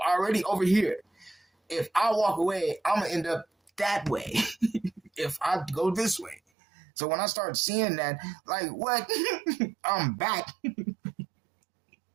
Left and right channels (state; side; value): drops out; left; at 6.4 s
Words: already over here. If I walk away, I'm going to end up that way if I go this way. So when I start seeing that, like, what? I'm back.